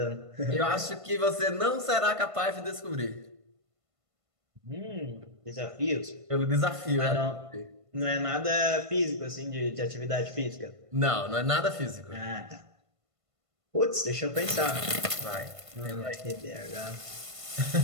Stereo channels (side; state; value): left; late; 1.5 ms